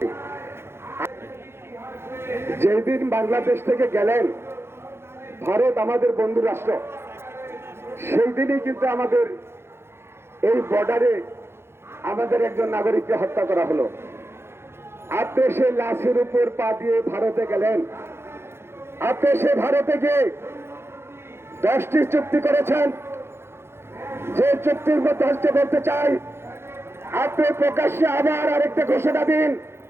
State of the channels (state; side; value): late; left; 0.12 ms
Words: যেদিন বাংলাদেশ থেকে গেলেন, ভারত আমাদের বন্ধু রাষ্ট্র, সেই দিনই কিন্তু আমাদের এই বর্ডারে আমাদের একজন নাগরিককে হত্যা করা হলো। আপনি সেই লাশের উপর পা দিয়ে ভারতে গেলেন। আপনি সে ভারতে গিয়ে 10টি চুক্তি করেছেন। যে চুক্তির মধ্যে আজকে বলতে চাই, আপনি প্রকাশ্যে আবার আরেকটা ঘোষণা দিন।